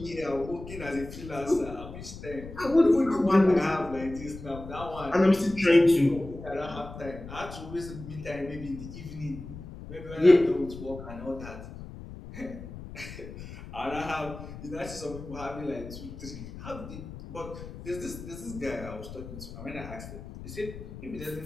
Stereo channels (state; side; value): noise; left; rumble, 12 dB below the sound